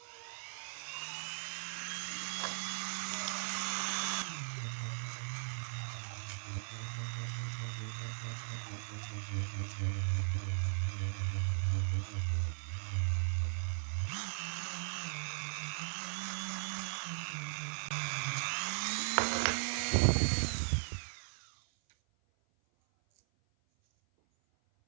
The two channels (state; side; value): silent; left; 52 dB below the other